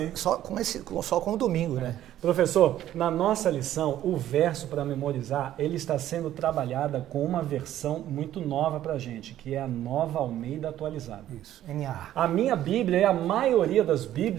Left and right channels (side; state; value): left; quieter; 12.6 dB